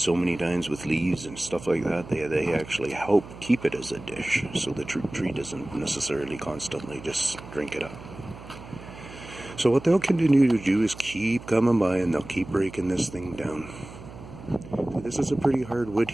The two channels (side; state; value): right; noise; hum, 16 dB below the sound